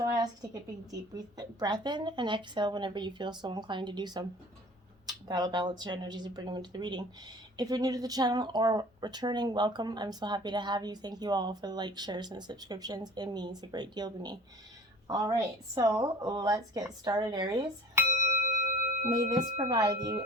I ask you to take a big, deep breath in and exhale whenever you feel so inclined to do so. That'll balance your energies and bring them into the reading. If you're new to the channel or returning, welcome. I'm so happy to have you. Thank you all for the likes, shares, and subscriptions. It means a great deal to me. All right, so let's get started, Aries. May this provide you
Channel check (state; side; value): normal; both; correlation 0.45